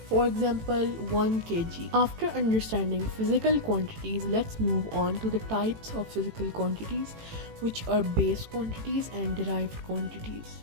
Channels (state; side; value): late; left; 18 ms